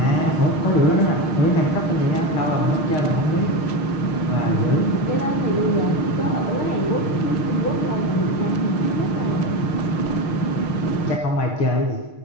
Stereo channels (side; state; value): right; late; 6.5 ms